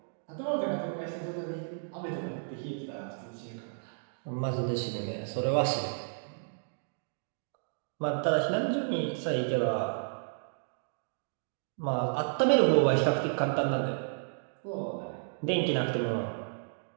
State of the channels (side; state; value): left; silent; digital silence